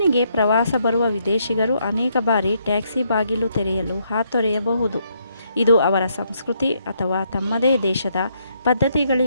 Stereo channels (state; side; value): inverted; both; correlation -0.74